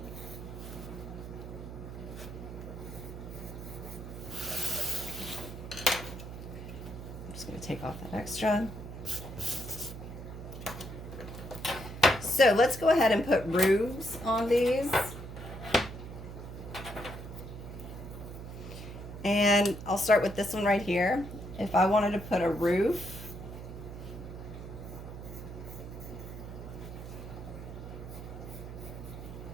just going to take off that extra. So let's go ahead and put roofs on these. And I'll start with this one right here. If I wanted to put a roof,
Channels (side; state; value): right; noise; hum, 10 dB below the sound